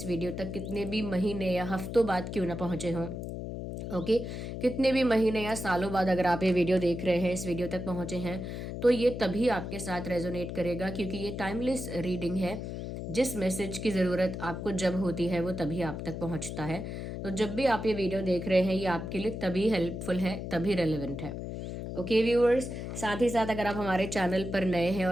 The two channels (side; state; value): left; noise; hum, 6 dB below the sound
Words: वीडियो तक कितने भी महीने या हफ्तों बाद क्यों ना पहुँचे हों, ओके कितने भी महीने या सालों बाद अगर आप ये वीडियो देख रहे हैं, इस वीडियो तक पहुँचे हैं, तो ये तभी आपके साथ रेजोनेट करेगा क्योंकि ये टाइमलेस रीडिंग है। जिस मैसेज की ज़रूरत आपको जब होती है वो तभी आप तक पहुँचता है। तो जब भी आप ये वीडियो देख रहे हैं, ये आपके लिए तभी हेल्पफुल है, तभी रेलेवेंट है। ओके व्यूअर्स, साथ ही साथ अगर आप हमारे चैनल पर नए हैं